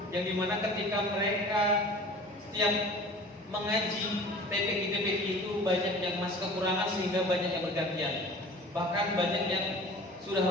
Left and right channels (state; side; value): normal; both; correlation 0.43